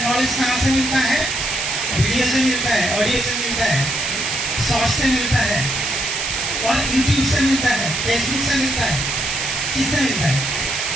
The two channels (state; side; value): noise; right; hiss, 1 dB below the sound